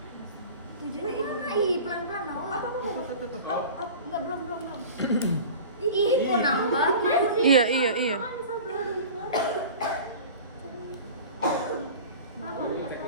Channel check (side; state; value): both; inverted; correlation -0.38